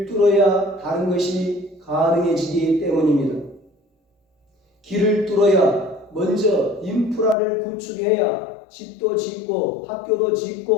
뚫어야 다른 것이 가능해지기 때문입니다. 길을 뚫어야 먼저 인프라를 구축해야 집도 짓고 학교도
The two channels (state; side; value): drops out; right; at 7.4 s